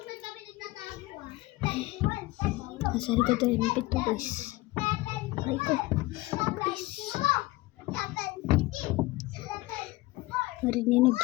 Kami nagtatago ah. Nasa likod tayo ng pinto guys. Aray ko. Guys. Narinig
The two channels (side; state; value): right; quieter; 20.0 dB